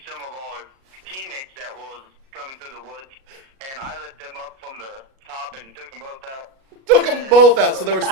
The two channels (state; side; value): late; left; 37 ms